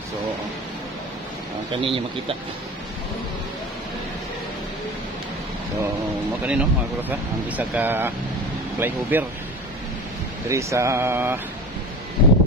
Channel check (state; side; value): normal; both; correlation 0.34